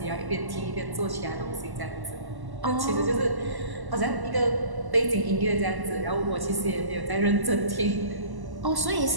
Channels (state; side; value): late; left; 1.1 ms